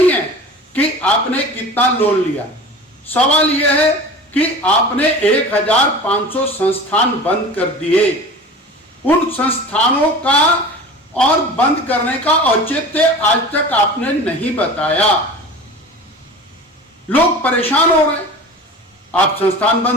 है कि आपने कितना लोन लिया, सवाल यह है कि आपने 1,500 संस्थान बंद कर दिए। उन संस्थानों का और बंद करने का औचित्य आज तक आपने नहीं बताया। लोग परेशान हो रहे, आप संस्थान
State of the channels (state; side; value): normal; both; correlation 0.37